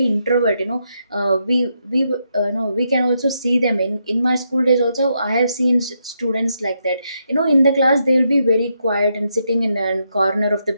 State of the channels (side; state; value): both; inverted; correlation -0.81